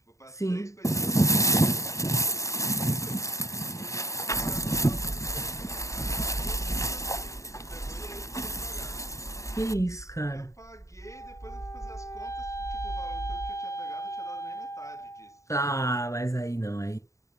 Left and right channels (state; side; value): late; right; 0.15 ms